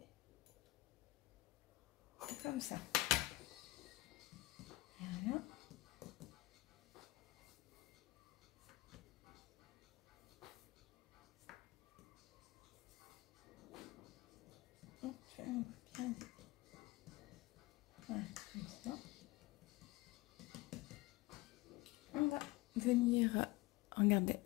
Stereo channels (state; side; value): quieter; right; 20.2 dB